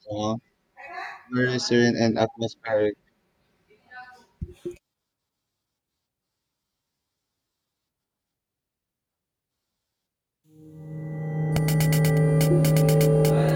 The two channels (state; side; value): identical; both; correlation 1.00